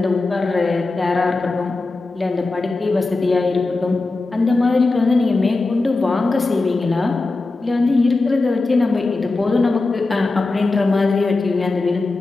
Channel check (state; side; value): quieter; right; 3.4 dB